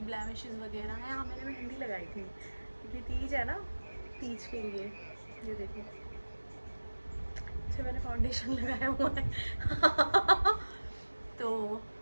ब्लैमिशेस वगैरह हैं। हाँ मैंने मेहंदी लगाई थी क्योंकि तीज है ना, तीज के लिए ये देखो अच्छा मैंने फाउंडेशन लगाया हुआ है तो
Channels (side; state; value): both; inverted; correlation -1.00